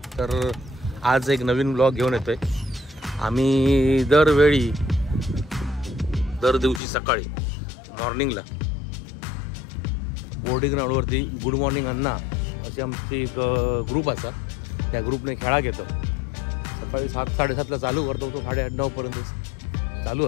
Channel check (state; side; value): drops out; right; at 6.8 s